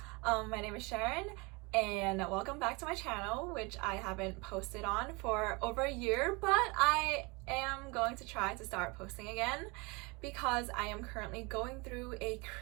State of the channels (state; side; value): quieter; left; 27.5 dB